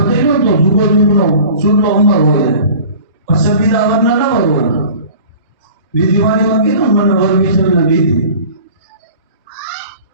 તો જુગો જુગનો સુલો અમર હોય. પછી બીજા વરના ન હોય. બીજી વાણીમાં કીધું મને વર વિસર્જન દીધી.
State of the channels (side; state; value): both; inverted; correlation -0.43